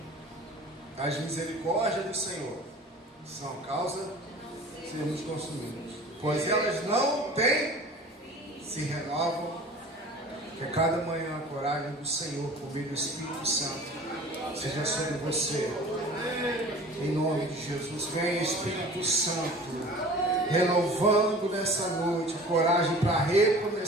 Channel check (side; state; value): both; normal; correlation 0.43